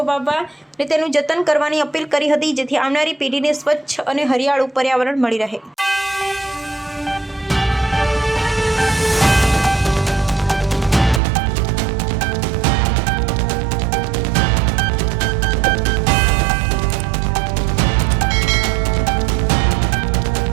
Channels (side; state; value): left; drops out; at 11.2 s